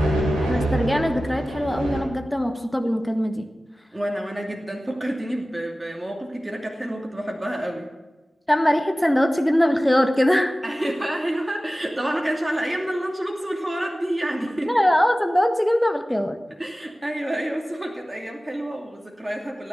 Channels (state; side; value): normal; both; correlation 0.96